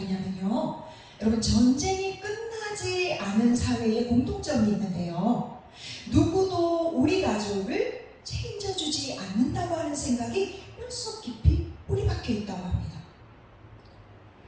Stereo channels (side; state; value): both; identical; correlation 1.00